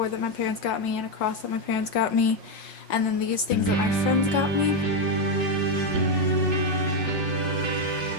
that my parents got me, and a cross that my parents got me, and then these things that my friends got me.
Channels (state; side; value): late; right; 5.5 ms